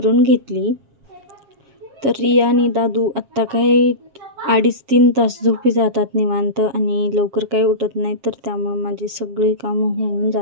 घेतली. तर रिया आणि दादू आत्ता काही 2.5-3 तास झोपी जातात निवांत आणि लवकर काही उठत नाही. तर त्यामुळं माझी सगळी कामं होऊन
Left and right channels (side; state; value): left; late; 7.4 ms